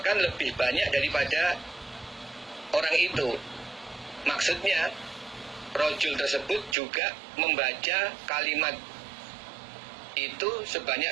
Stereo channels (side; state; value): left; drops out; at 6.8 s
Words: lebih banyak daripada orang itu. Maksudnya rojul tersebut juga membaca kalimat itu sebanyak